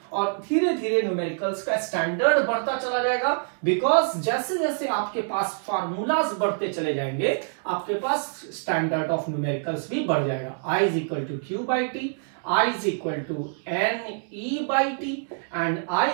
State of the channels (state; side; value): silent; left; digital silence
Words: और धीरे धीरे न्यूमेरिकल्स का स्टैंडर्ड बढ़ता चला जाएगा। बिकॉज जैसे जैसे आपके पास फार्मूलाज बढ़ते चले जाएंगे, आपके पास स्टैंडर्ड ऑफ न्यूमेरिकल्स भी बढ़ जाएगा। I is equal to Q by T, I is equal to N E by T and I